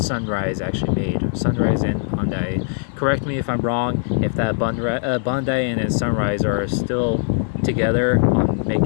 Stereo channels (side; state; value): right; silent; 65 dB below the other